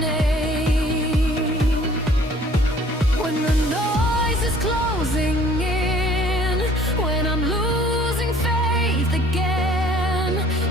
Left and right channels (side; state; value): both; normal; correlation 0.54